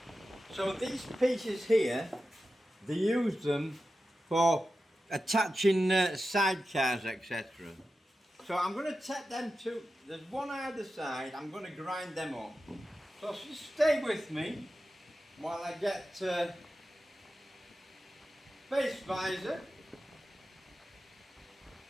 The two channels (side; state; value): both; normal; correlation 0.92